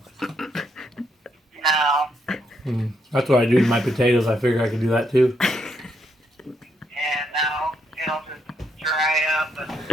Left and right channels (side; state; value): both; normal; correlation 0.76